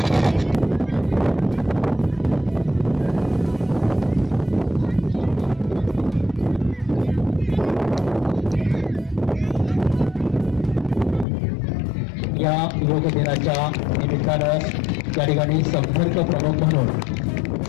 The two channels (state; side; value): drops out; right; at 11.2 s